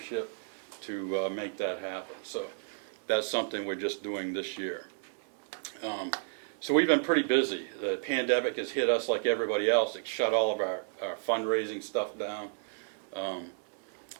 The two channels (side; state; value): left; silent; 56 dB below the other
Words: to make that happen. So that's something we're just doing this year. So we've been pretty busy. The pandemic has hit us like everybody else. It shut all of our fundraising stuff down.